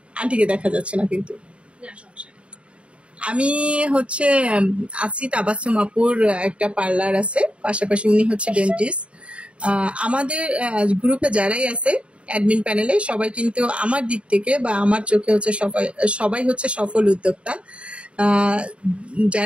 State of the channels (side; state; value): left; late; 0.060 ms